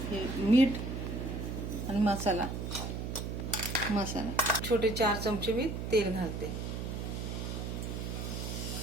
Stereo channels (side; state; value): right; noise; hum, 4 dB below the sound